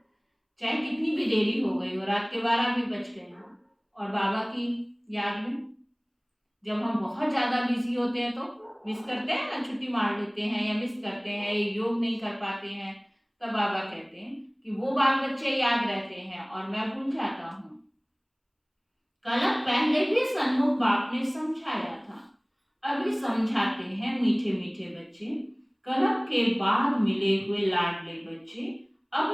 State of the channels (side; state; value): both; identical; correlation 1.00